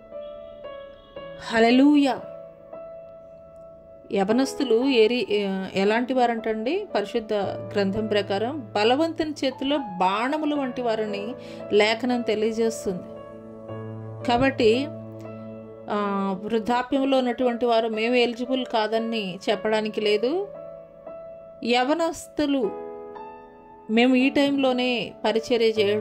హల్లెలూయా. యవనస్తులు ఎలాంటి వారంటండి? పరిశుద్ధ గ్రంథం ప్రకారం బలవంతుని చేతిలో బాణములు వంటి వారిని లేఖనం తెలియజేస్తుంది. కాబట్టి వృద్ధాప్యంలో ఉన్నటువంటి వారు మేము ఎలిజిబుల్ కాదని చెప్పడానికి లేదు. యవనస్తులు మేము ఈ టైంలోనే పరిచర్య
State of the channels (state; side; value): identical; both; correlation 1.00